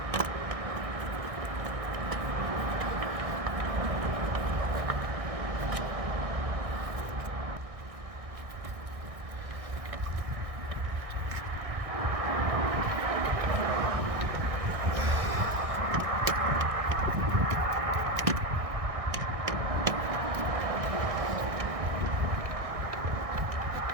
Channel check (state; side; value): late; left; 1.6 ms